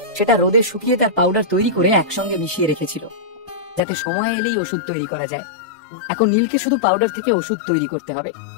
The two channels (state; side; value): drops out; right; at 3.8 s